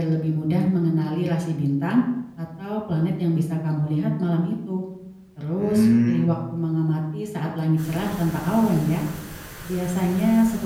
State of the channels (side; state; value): both; identical; correlation 1.00